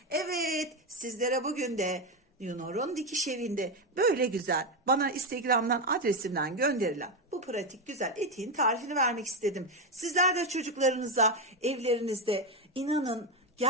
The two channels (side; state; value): both; normal; correlation 0.10